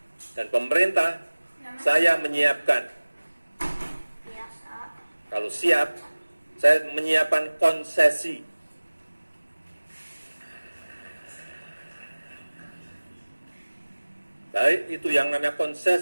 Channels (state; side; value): inverted; both; correlation -1.00